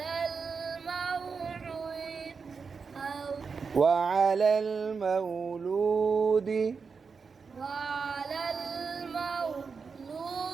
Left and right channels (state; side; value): quieter; left; 5.3 dB